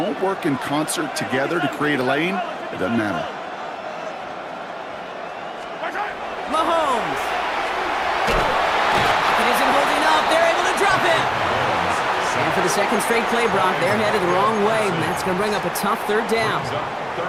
work in concert together to create a lane, it doesn't matter. Mahomes. It isn't holding up. They're able to drop it. And for the second straight play, Brock, they're headed the wrong way, and that's going to bring up a tough 3rd down.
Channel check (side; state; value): both; identical; correlation 1.00